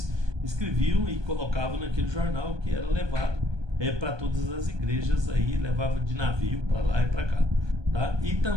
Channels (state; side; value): late; left; 1.2 ms